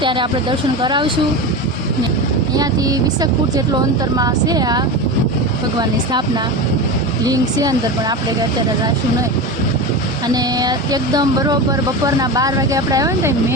ત્યારે આપણે દર્શન કરાવશું. ને અહીંયાથી 20 ફૂટ જેટલો અંતરમાં છે આ ભગવાનની સ્થાપના લિંગ છે અંદર, પણ આપણે અત્યારે જઈશું નહીં. અને એકદમ બરોબર બપોરના 12 વાગે આપણે આવ્યા ને તો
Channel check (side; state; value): both; normal; correlation 0.23